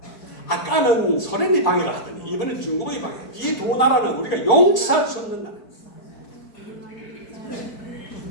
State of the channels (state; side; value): late; right; 4.5 ms